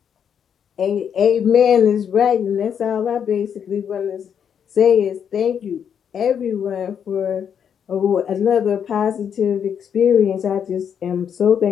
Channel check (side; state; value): right; quieter; 8.0 dB